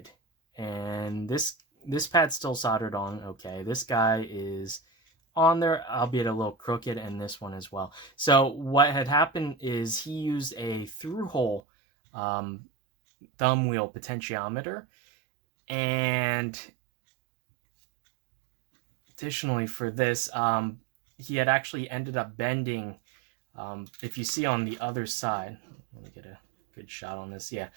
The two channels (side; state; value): left; drops out; at 11.6 s